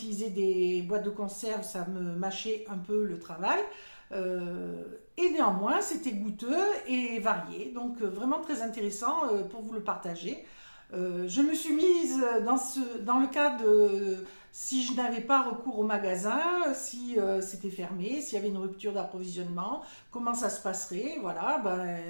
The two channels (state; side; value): inverted; both; correlation -1.00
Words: des boîtes de conserve, ça me mâchait un peu le travail. Et néanmoins, c'était goûteux et varié, donc vraiment très intéressant pour vous le partager. Je me suis mise dans le cas de si je n'avais pas recours au magasin, si c'était fermé, s'il y avait une rupture d'approvisionnement, comment ça se passerait. Voilà,